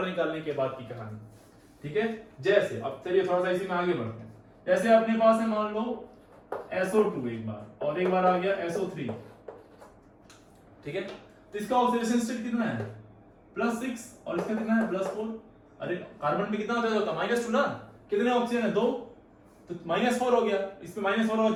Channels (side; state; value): both; identical; correlation 1.00